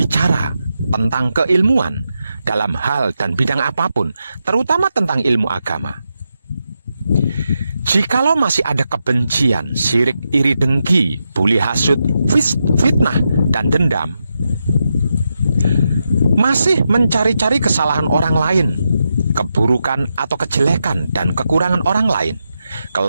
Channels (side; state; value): both; inverted; correlation -0.86